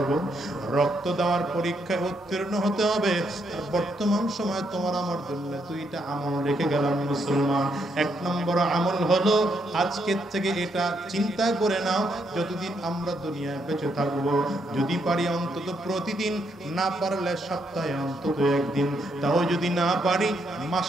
রক্ত দেওয়ার পরীক্ষায় উত্তীর্ণ হতে হবে। বর্তমান সময় তোমার আমার জন্য দুইটা আমল রেখে গেলাম মুসলমান। এক নম্বর আমল হলো আজকের থেকে এটা চিন্তা করে নাও, যতদিন আমরা দুনিয়ায় বেঁচে থাকবো যদি পারি অন্তত প্রতিদিন, না পারলে সপ্তাহে অন্তত একদিন, তাও যদি না পারি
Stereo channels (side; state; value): both; normal; correlation 0.76